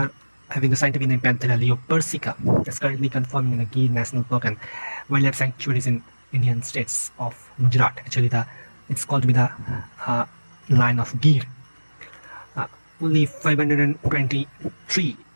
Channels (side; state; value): both; inverted; correlation -1.00